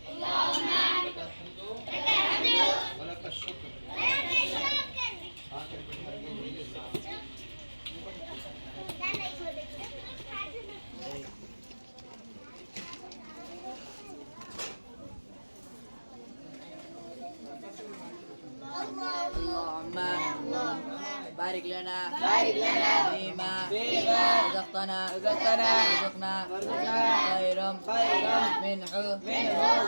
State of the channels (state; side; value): inverted; both; correlation -1.00